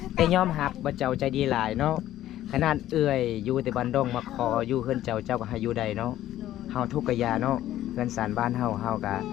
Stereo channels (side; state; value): right; quieter; 13.3 dB